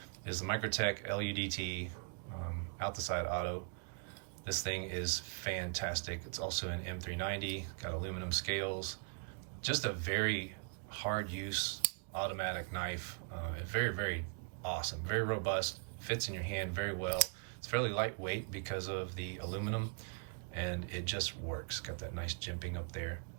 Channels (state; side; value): quieter; left; 39.8 dB